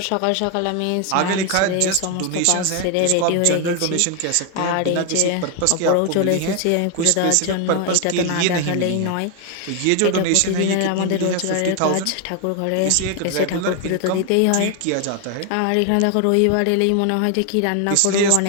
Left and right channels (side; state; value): both; different; correlation 0.01